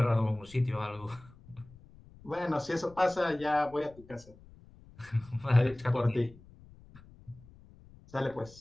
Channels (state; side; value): noise; left; rumble, 23 dB below the sound